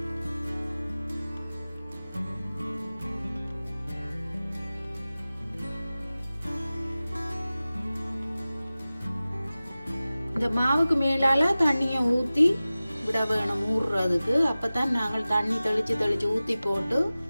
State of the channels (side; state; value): both; inverted; correlation -0.97